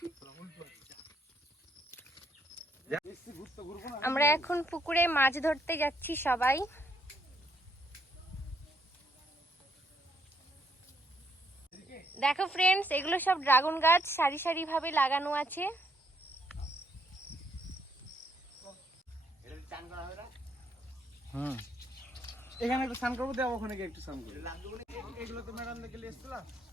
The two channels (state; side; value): normal; both; correlation 0.72